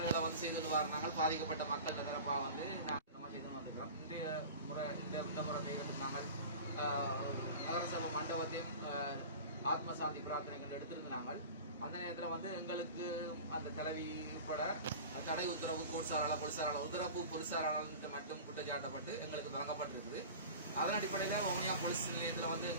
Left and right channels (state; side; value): inverted; both; correlation -0.36